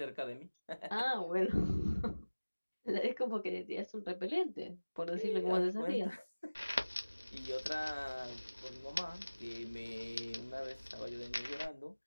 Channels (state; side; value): inverted; both; correlation -1.00